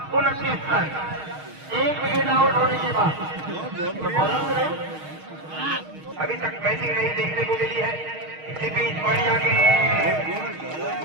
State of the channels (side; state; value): left; late; 6.4 ms